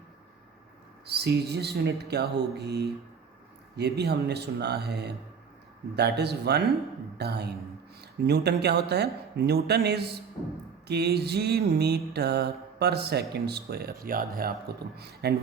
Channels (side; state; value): left; quieter; 6.2 dB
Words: CGS unit क्या होगी? ये भी हमने सुना है. That is 1 Dyne. न्यूटन क्या होता है? Newton is kg metre per second square. याद है आपको तो.